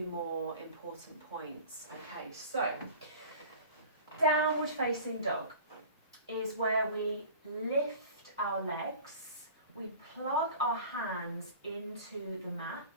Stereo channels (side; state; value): both; inverted; correlation -0.41